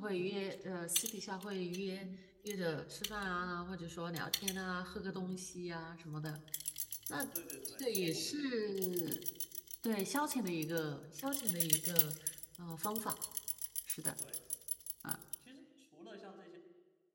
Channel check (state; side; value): identical; both; correlation 1.00